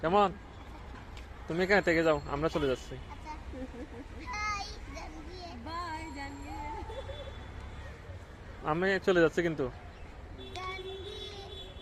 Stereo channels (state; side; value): identical; both; correlation 1.00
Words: কেমন? তুমি এখানে থেকে যাও, আমরা চলে যাচ্ছি। আমি চলে যাচ্ছি কিন্তু